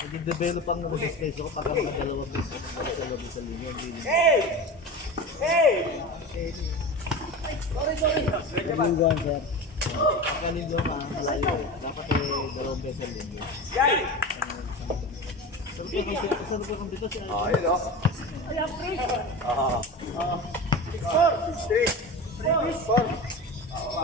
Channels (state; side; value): normal; both; correlation 0.28